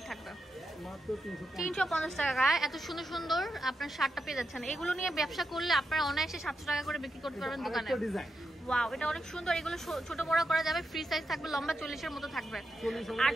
থাকবে, 350 টাকায় এত সুন্দর সুন্দর আপনার শার্টটা পেয়ে যাচ্ছেন। এগুলো নিয়ে ব্যবসা করলে আপনারা অনায়াসে 700 টাকা করে বিক্রি করতে পারবেন দোকানে। ওয়াও, এটা অনেক সুন্দর। এগুলো ছোট বড় করা যাবে, ফ্রি সাইজ থাকবে, লম্বা 40 এর মতো থাকবে,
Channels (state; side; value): normal; both; correlation 0.86